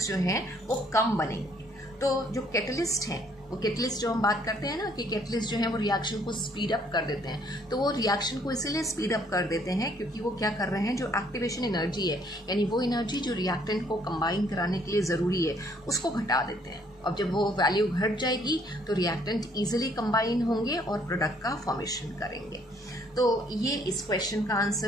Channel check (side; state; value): both; normal; correlation 0.64